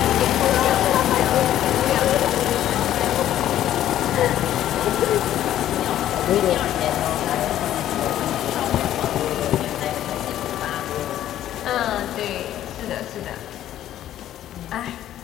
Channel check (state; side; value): quieter; right; 12.2 dB